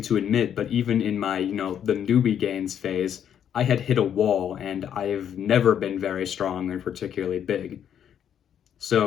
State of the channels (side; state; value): right; quieter; 9.2 dB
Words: to admit, but even in my, the newbie gains phase, I had hit a wall, and I've never been very strong or particularly big.